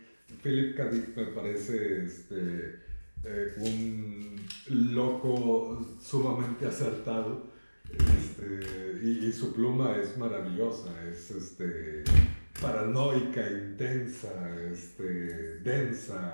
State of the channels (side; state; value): both; inverted; correlation -1.00